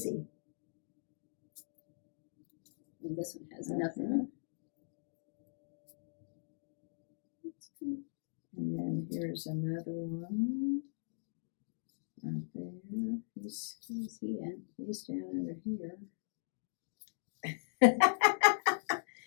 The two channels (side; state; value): right; silent; digital silence